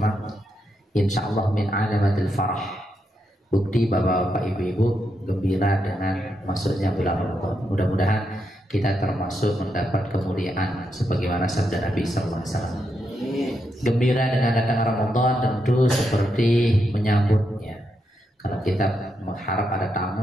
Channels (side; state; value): both; normal; correlation 0.82